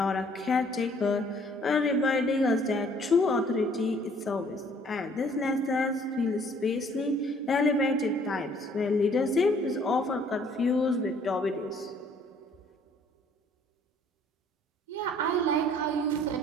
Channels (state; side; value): normal; both; correlation 0.59